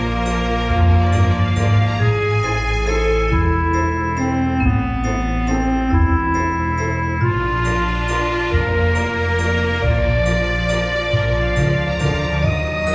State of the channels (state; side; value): identical; both; correlation 1.00